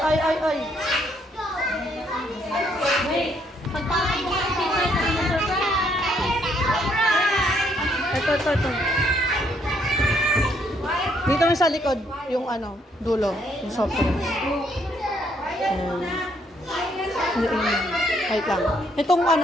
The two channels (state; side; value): normal; both; correlation 0.70